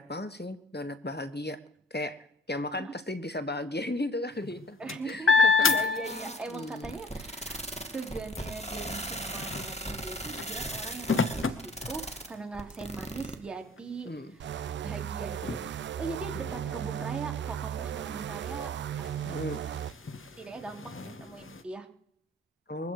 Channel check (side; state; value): both; normal; correlation 0.49